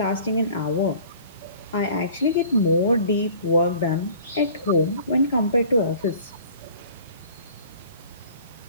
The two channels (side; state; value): both; inverted; correlation -0.48